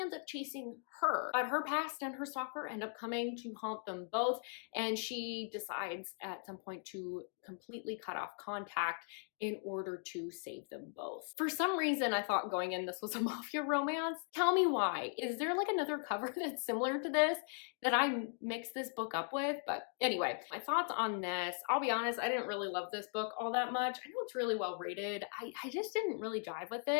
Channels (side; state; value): right; silent; 52 dB below the other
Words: ends up chasing her. But her past and her stalker end up coming to haunt them both, and she decides at some point to completely cut off contact in order to save them both. For some reason, I thought going in this was a mafia romance. Tell me why. Is there like another cover that's similar to this that I mixed this book up with? But anyway, my thoughts on this. I'll be honest, I didn't really love this book all that much. I know it's really well rated. I just didn't really jive with